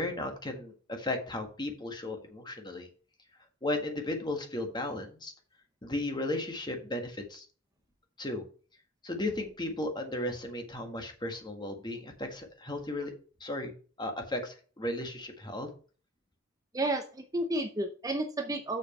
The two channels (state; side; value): normal; both; correlation 0.40